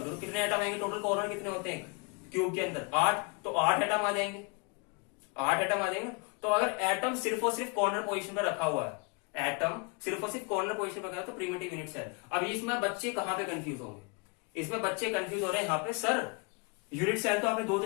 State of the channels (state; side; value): quieter; right; 32.5 dB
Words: कितने एटम आएंगे टोटल, कॉर्नर कितने होते हैं क्यूब के अंदर, 8, तो 8 एटम आ जाएंगे, 8 एटम आ जाएंगे। तो अगर एटम सिर्फ और सिर्फ कॉर्नर पोजीशन पर रखा हुआ है, एटम सिर्फ और सिर्फ कॉर्नर पोजीशन पर रखा है, तो प्रिमिटिव यूनिट सेल। अब इसमें बच्चे कहां पे कंफ्यूज होंगे, इसमें बच्चे कंफ्यूज हो रहे हैं यहाँ पे, सर यूनिट सेल तो आपने दो